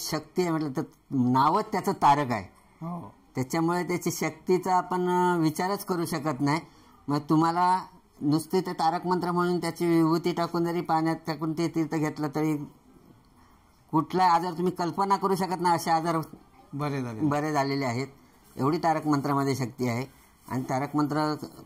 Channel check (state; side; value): identical; both; correlation 1.00